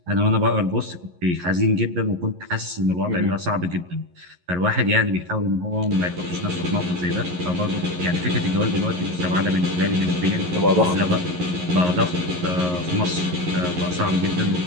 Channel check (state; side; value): late; left; 11 ms